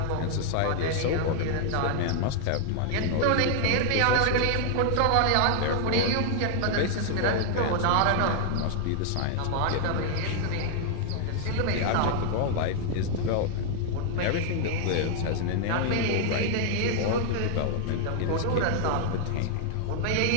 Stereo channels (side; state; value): both; different; correlation 0.00